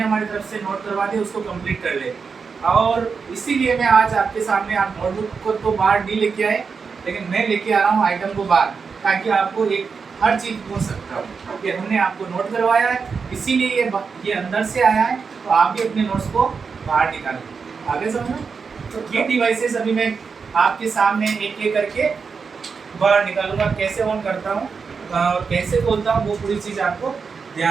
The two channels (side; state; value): left; quieter; 5.4 dB